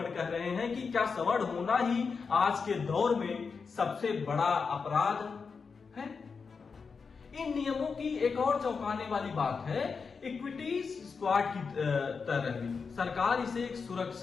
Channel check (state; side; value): quieter; right; 5.2 dB